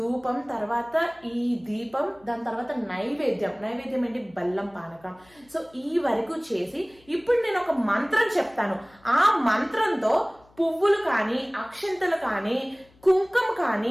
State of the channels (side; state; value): left; noise; hum, 30 dB below the sound